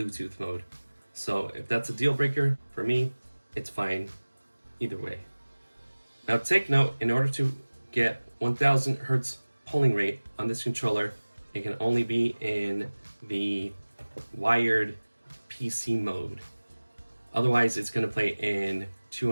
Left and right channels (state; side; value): inverted; both; correlation -1.00